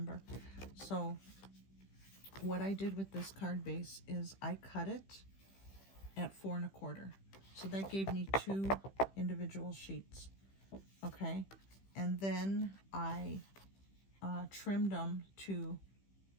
So what I did with this card base is I cut it at 4 1/4. So that gave me 2 individual sheets. Okay, and then I trimmed them to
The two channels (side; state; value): right; late; 15 ms